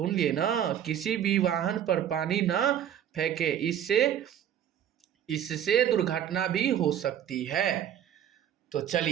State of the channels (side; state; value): left; quieter; 10.0 dB